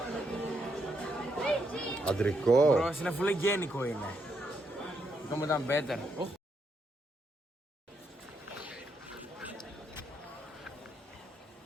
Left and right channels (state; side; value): normal; both; correlation 0.78